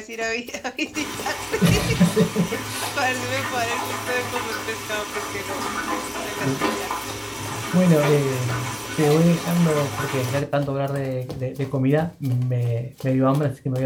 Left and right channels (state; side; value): identical; both; correlation 1.00